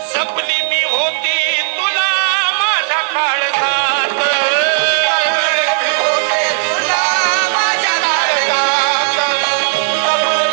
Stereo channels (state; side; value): silent; left; 70 dB below the other